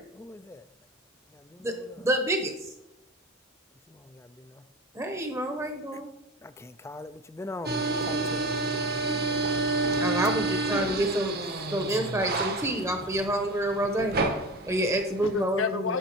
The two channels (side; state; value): both; normal; correlation 0.30